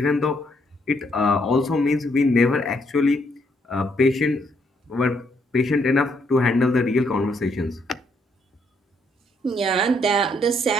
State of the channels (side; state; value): both; normal; correlation 0.72